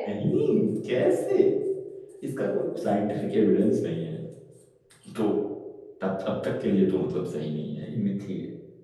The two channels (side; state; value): both; identical; correlation 1.00